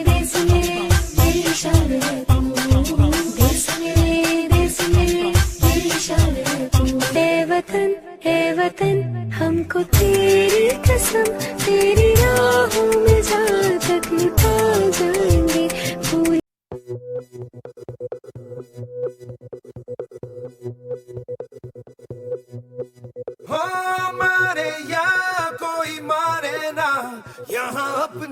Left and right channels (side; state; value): both; identical; correlation 1.00